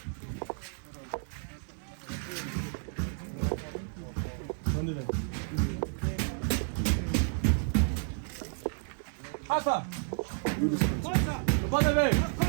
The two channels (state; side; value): silent; left; 57 dB below the other